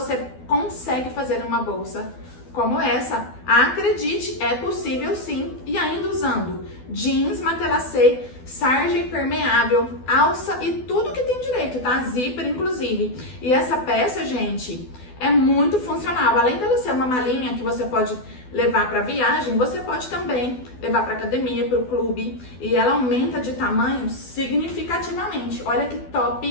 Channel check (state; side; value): late; right; 12 ms